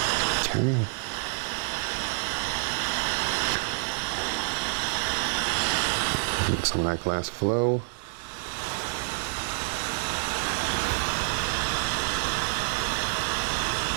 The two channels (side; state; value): left; quieter; 39.3 dB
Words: Some of that glass flow.